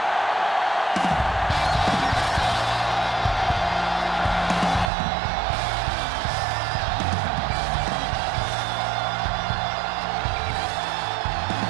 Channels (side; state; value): left; drops out; at 4.9 s